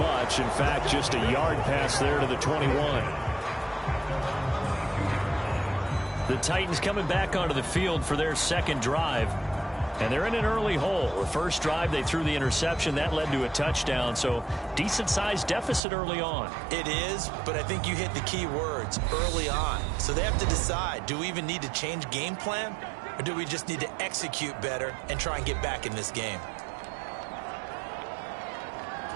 In fact, just a yard pass there to the 21. The Titans coming back onto the field for their second drive. And they're in an early hole. The first drive, they threw the interception. That led to a touchdown. So decent-sized deficit early on. It is, but I think you hit the key words, early on. So they have to decide, do we even need to change game plan? Or do we just need to execute better and try and get back in this game?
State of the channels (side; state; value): left; drops out; at 15.8 s